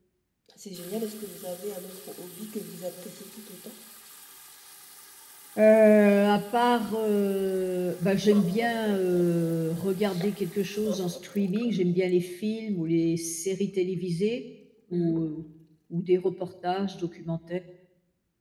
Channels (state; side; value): identical; both; correlation 1.00